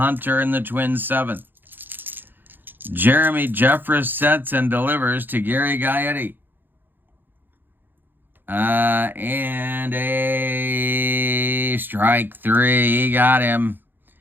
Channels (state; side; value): late; left; 0.094 ms